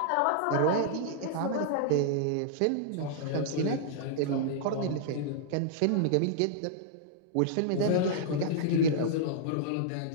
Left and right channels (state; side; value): different; both; correlation -0.01